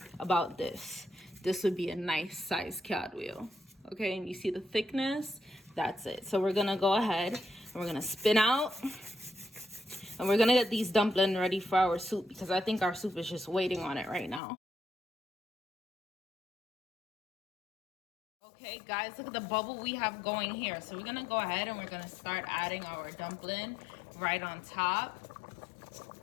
about this would be a nice size cartwheel. Okay, and you see the thickness? That's it. So we're gonna go ahead We're gonna spin out. And we're gonna get these dumplings ready for our soup because I think our soup is just waiting on it right now. Okay, guys, look at the bubble we have going here. So we're gonna go ahead and we're gonna start adding our dumpling right on top.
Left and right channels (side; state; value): right; drops out; at 14.4 s